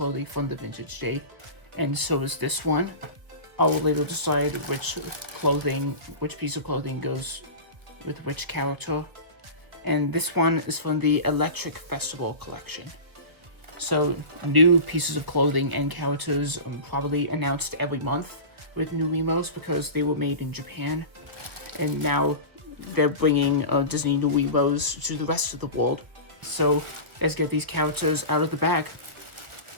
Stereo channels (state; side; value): late; left; 1.7 ms